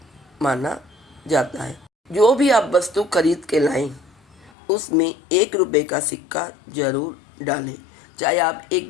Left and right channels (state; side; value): drops out; right; at 4.5 s